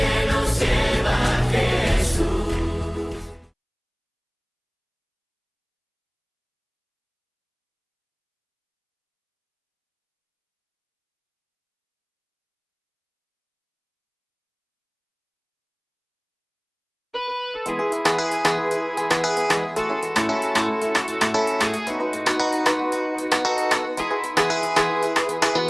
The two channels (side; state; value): both; identical; correlation 1.00